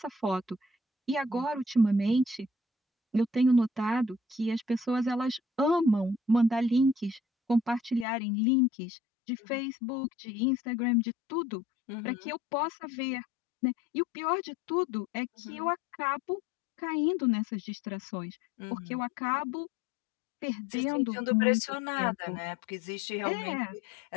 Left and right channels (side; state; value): right; drops out; at 8.1 s